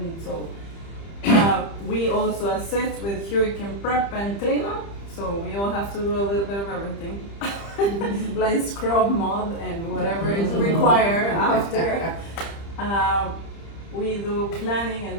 so we also assist with hurricane prep and cleanup, so we all have to do a little bit of everything, like scrub, mud, and whatever is required after. We do planning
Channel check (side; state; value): right; late; 30 ms